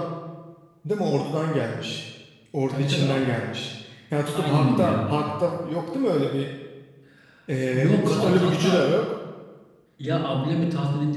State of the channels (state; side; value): identical; both; correlation 1.00